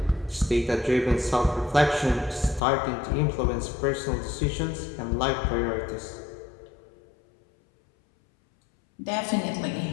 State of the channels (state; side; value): drops out; right; at 2.6 s